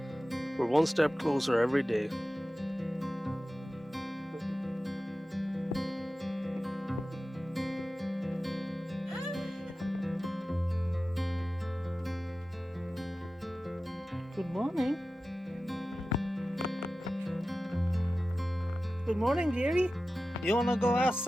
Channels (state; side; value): normal; both; correlation 0.94